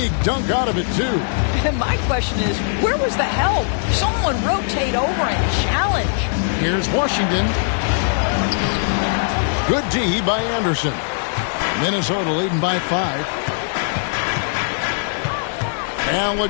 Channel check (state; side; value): silent; right; digital silence